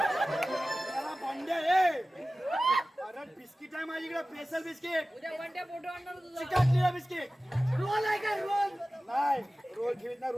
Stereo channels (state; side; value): normal; both; correlation 0.96